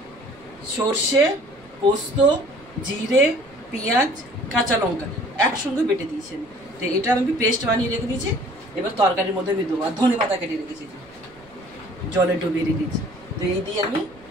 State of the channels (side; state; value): right; noise; rumble, 26 dB below the sound